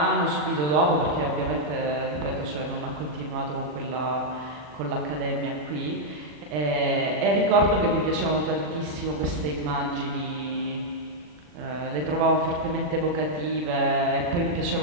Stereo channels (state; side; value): late; left; 40 ms